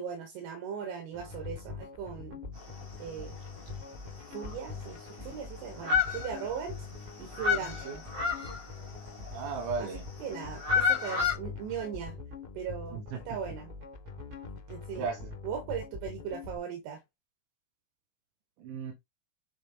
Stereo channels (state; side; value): late; left; 19 ms